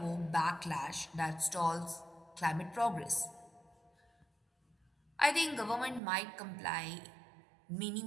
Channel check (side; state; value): left; drops out; at 6.0 s